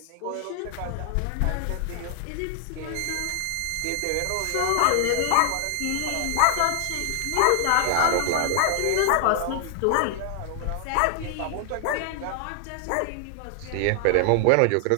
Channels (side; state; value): both; different; correlation 0.00